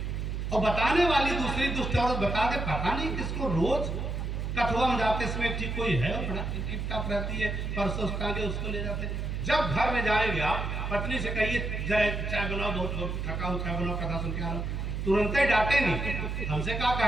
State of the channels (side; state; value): right; noise; hum, 3 dB below the sound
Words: और बताने वाली दूसरी दुष्ट औरत बता दे, पता नहीं किसको रोज कठुआ में जाते समय ठीक कोई है और बड़ा टिप टाप रहती है, परसों टांगे उसको ले जाते। जब घर में जाएंगे आप पत्नी से कहिए चाय बनाओ, बहुत थका हूँ, चाय बनाओ, कथा सुन के आ रहा हूँ, तुरंत ही डांटे नहीं। हमसे क्या